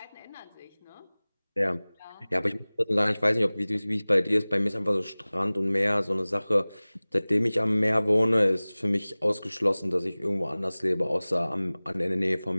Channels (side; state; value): both; inverted; correlation -0.99